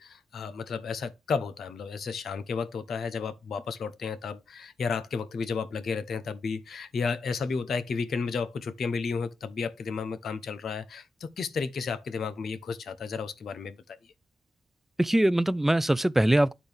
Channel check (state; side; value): normal; both; correlation 0.90